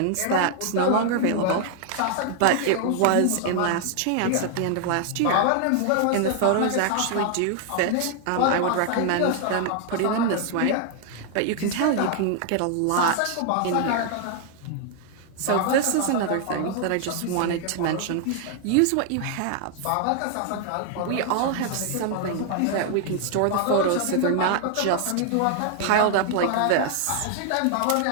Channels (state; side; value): different; both; correlation 0.00